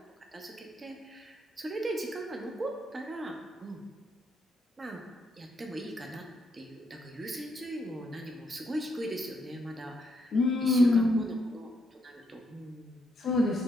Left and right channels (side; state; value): both; normal; correlation 0.76